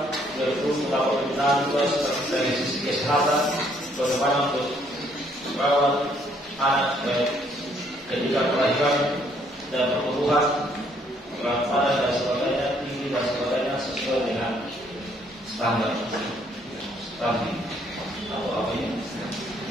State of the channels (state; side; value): normal; both; correlation 0.66